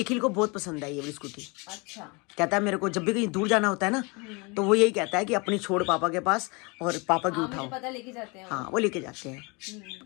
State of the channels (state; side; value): quieter; right; 28.9 dB